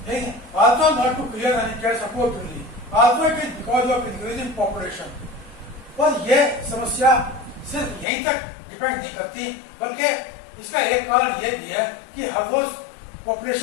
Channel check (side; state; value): right; drops out; at 8.1 s